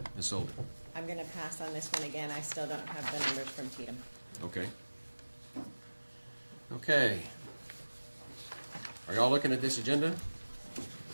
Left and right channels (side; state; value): both; inverted; correlation -1.00